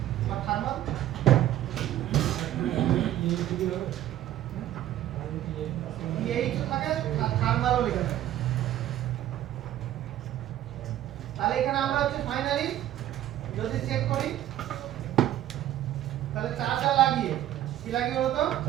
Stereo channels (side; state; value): left; quieter; 12.9 dB